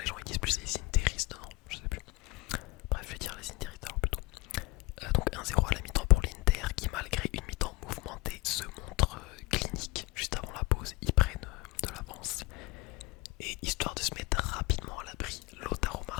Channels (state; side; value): quieter; right; 23.0 dB